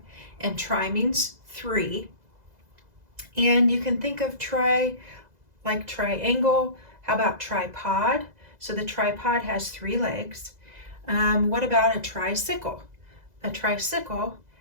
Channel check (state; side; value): late; left; 2.0 ms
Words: and tri means 3. And you can think of tri like triangle. How about tripod? So the tripod has 3 legs. What about a tricycle? A tricycle